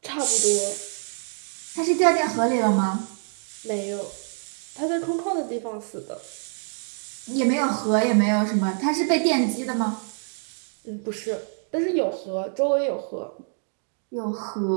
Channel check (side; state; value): left; silent; 58 dB below the other